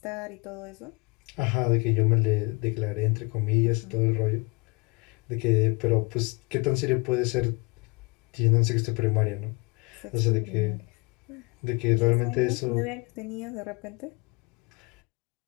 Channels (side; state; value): right; quieter; 28.8 dB